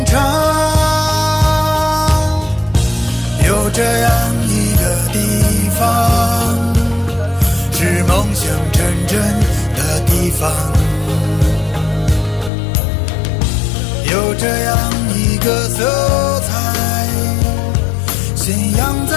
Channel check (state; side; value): drops out; right; at 12.5 s